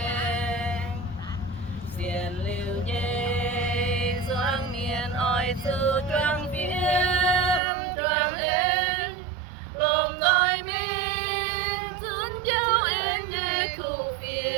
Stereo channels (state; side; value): drops out; left; at 7.6 s